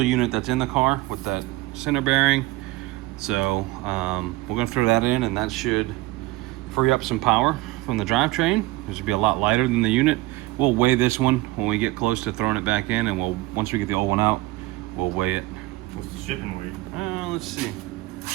unit that's in the car with that center bearing. So we're gonna throw that in, and that should free up some power from the drivetrain. This should be a lot lighter than the unit. We'll weigh this one when we get close to throwing it back in, and once we get the old one out, we'll weigh it. What's the shipping weight? Let's see.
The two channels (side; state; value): left; quieter; 19.8 dB